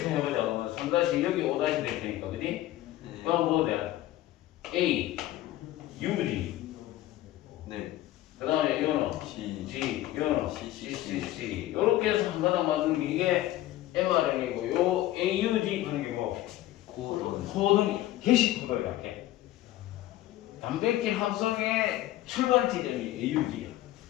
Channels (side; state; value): right; quieter; 14.9 dB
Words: 해보자. 그러면 3- 여기 5- 될 테니까, 그지? 그럼 뭐 돼? A, UG. 그 다음에 요는 G, 요는 CCC. 요렇게 해서 한 가닥 만드는 게 이게 mRNA고, 요 AUG 하는 게 뭐? 코돈, 게시 코드를 이렇게. 단백질 합성의 출발 지점이 AUG야.